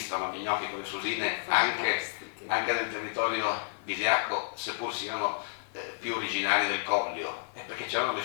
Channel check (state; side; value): silent; right; digital silence